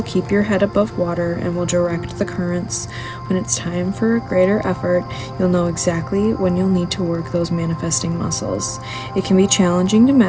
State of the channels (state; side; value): identical; both; correlation 1.00